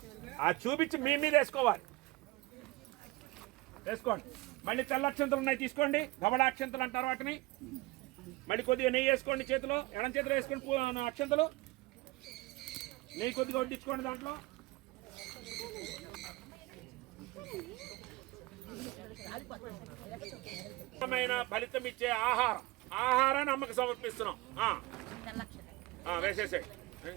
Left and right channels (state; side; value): quieter; left; 21.4 dB